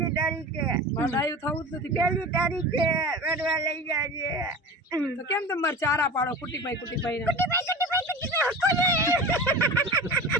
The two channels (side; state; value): both; normal; correlation 0.33